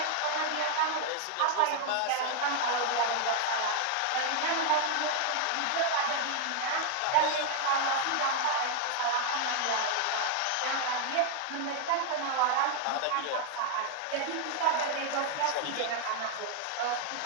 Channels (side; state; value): both; different; correlation 0.00